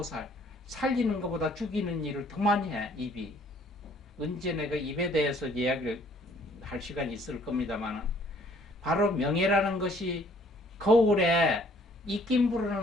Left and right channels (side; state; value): both; normal; correlation 0.60